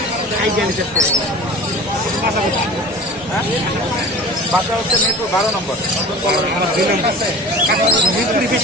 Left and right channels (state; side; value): normal; both; correlation 0.39